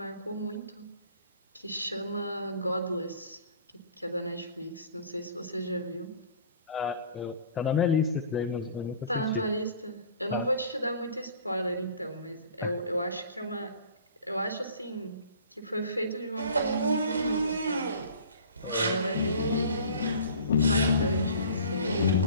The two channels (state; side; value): inverted; both; correlation -0.45